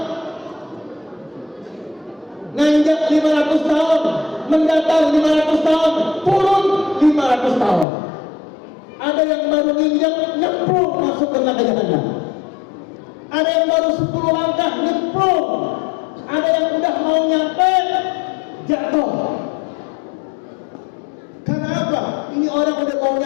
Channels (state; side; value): drops out; right; at 7.9 s